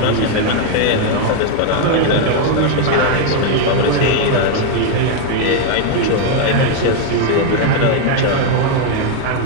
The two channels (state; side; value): different; both; correlation 0.01